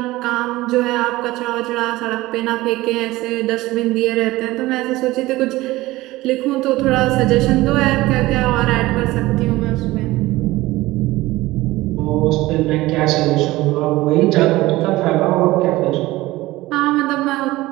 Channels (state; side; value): quieter; left; 18.5 dB